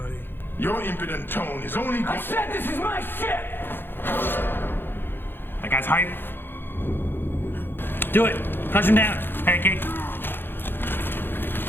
Your impudent tone is only going. said this is my ship! That guy's hype. Do it. Crush him down. Pancake.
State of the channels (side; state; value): right; late; 0.10 ms